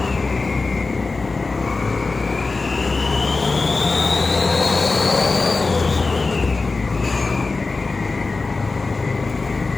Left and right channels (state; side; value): quieter; right; 3.8 dB